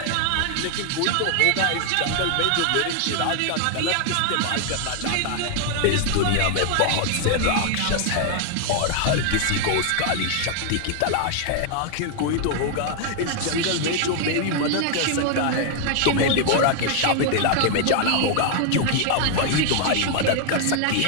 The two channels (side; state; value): both; different; correlation 0.00